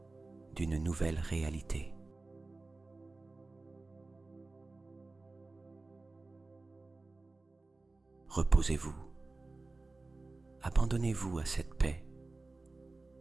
d'une nouvelle réalité. Reposez-vous, abandonnez-vous à cette paix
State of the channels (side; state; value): left; quieter; 3.3 dB